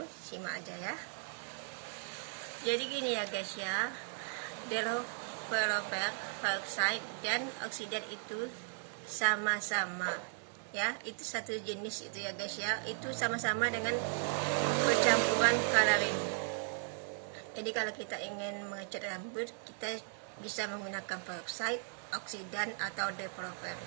Simak aja ya. Jadi gini ya guys ya, developer, peroxide, dan oksidan itu sama-sama ya, itu satu jenis itu ya guys ya, itu sama-sama dengan percampuran coloring. Jadi kalau kita ingin mengecat rambut, kita bisa menggunakan peroxide, oksidan, atau developer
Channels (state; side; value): silent; left; 53 dB below the other